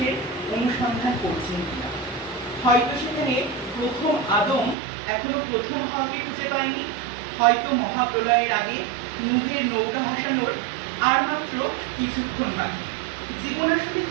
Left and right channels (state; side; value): drops out; left; at 4.8 s